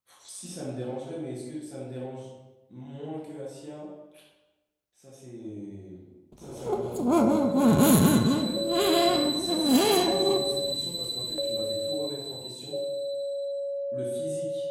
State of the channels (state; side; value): identical; both; correlation 1.00